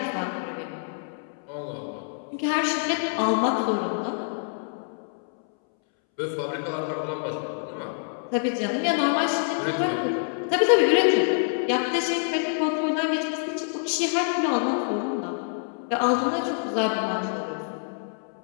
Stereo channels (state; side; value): silent; right; 61 dB below the other